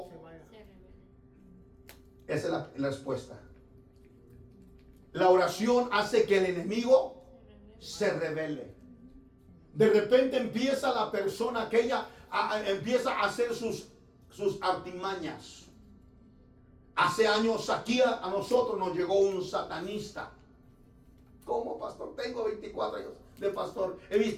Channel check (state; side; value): identical; both; correlation 1.00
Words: Esa es la respuesta. La oración hace que el enemigo se revele. De repente empieza la persona aquella, empieza a hacer sus artimañas. Hace años aquí a nosotros nos llegó un satanista. ¿Cómo, pastor? Tengo 24 años de pastor. He